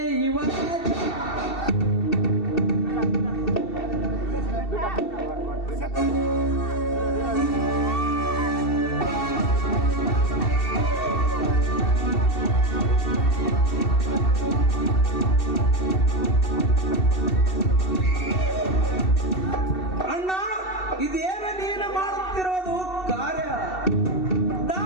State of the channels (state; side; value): late; right; 2.7 ms